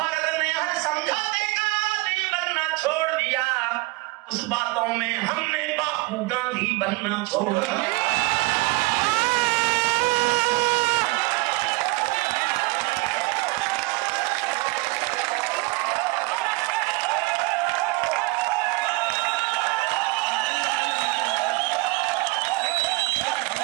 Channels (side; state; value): left; quieter; 23.3 dB